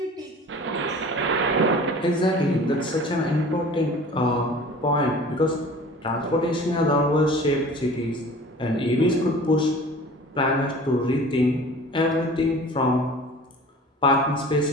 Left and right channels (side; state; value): both; normal; correlation 0.43